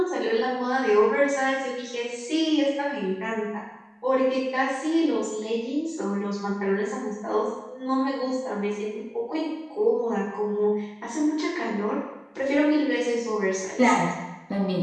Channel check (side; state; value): both; identical; correlation 1.00